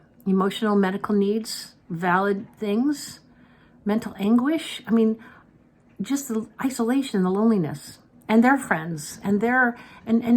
emotional, medical needs, valid things, mental anguish. Just the isolation, the loneliness, and their friends, and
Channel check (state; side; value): identical; both; correlation 1.00